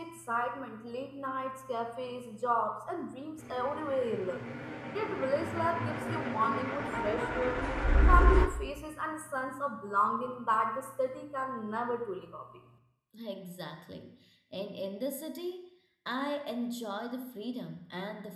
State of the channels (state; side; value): identical; both; correlation 1.00